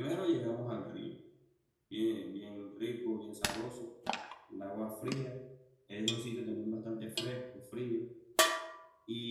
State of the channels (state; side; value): identical; both; correlation 1.00